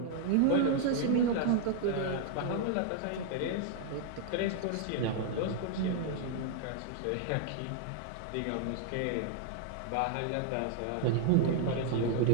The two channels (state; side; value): different; both; correlation 0.00